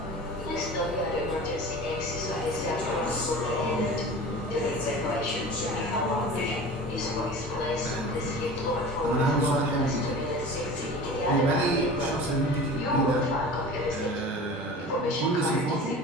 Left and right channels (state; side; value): normal; both; correlation 0.37